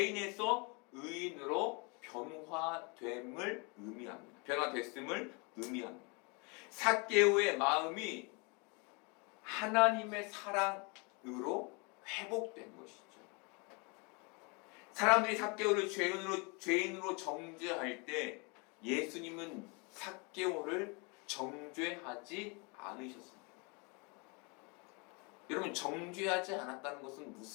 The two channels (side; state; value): right; quieter; 31.2 dB